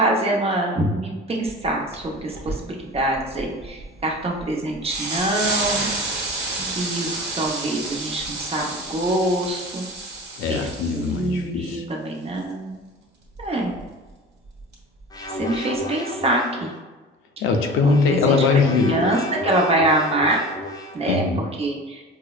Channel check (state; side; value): normal; both; correlation 0.36